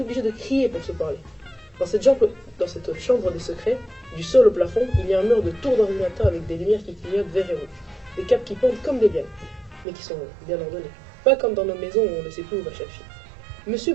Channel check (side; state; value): left; drops out; at 9.9 s